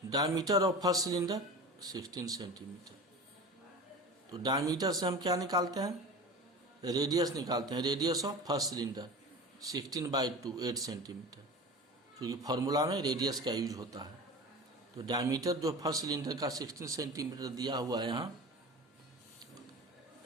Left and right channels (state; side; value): normal; both; correlation 0.33